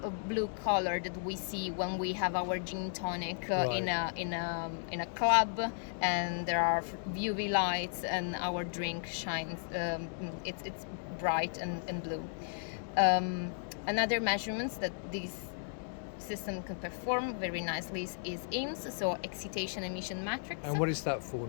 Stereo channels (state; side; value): silent; right; digital silence